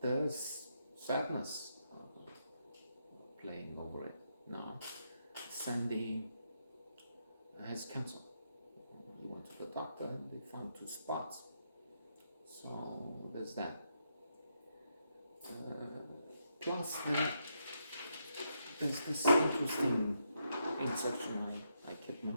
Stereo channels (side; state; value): both; inverted; correlation -0.80